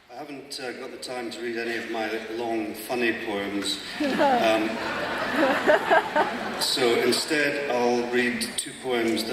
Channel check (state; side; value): identical; both; correlation 1.00